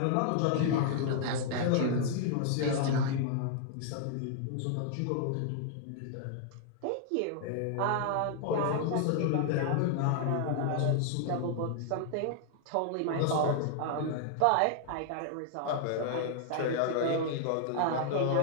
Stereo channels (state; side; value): different; both; correlation -0.01